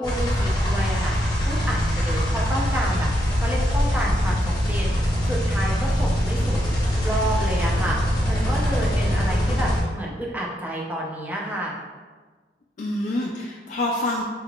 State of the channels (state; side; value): normal; both; correlation 0.80